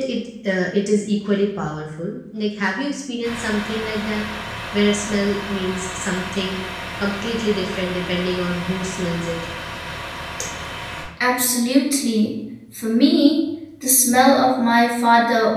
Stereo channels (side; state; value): both; identical; correlation 1.00